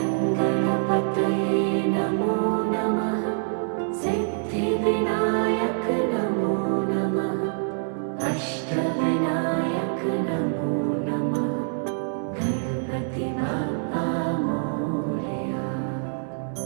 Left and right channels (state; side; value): silent; left; 57 dB below the other